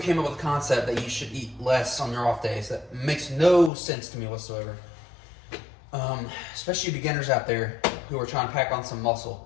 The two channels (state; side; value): drops out; right; at 3.7 s